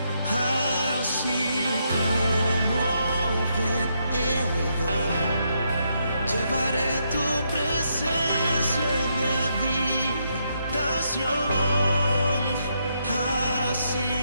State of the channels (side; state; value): both; inverted; correlation -0.78